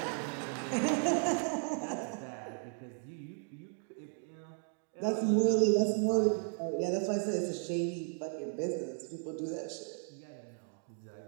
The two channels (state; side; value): silent; left; 54 dB below the other